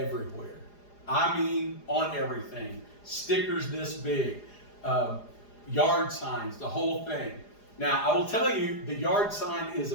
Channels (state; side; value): late; right; 4.9 ms